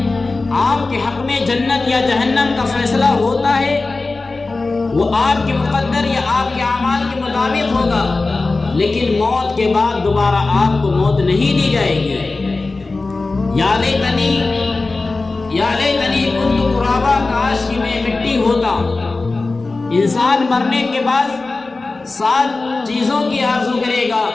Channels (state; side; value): quieter; right; 3.5 dB